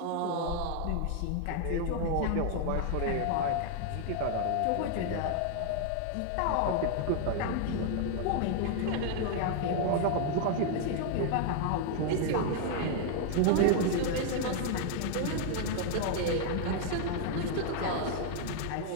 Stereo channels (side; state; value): both; different; correlation 0.00